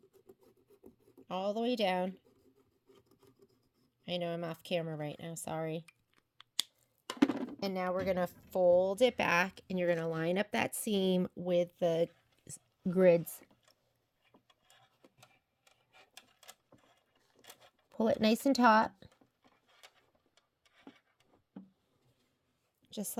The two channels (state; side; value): identical; both; correlation 1.00